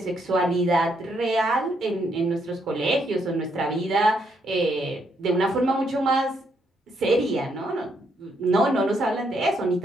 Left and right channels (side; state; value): both; normal; correlation 0.75